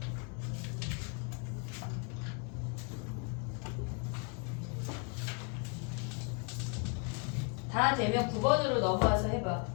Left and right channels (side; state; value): right; quieter; 35.8 dB